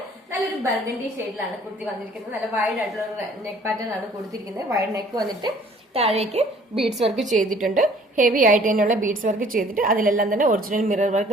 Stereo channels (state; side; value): normal; both; correlation 0.55